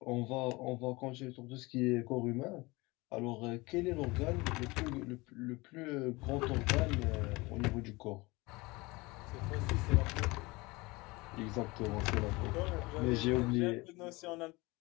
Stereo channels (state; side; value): quieter; right; 23.4 dB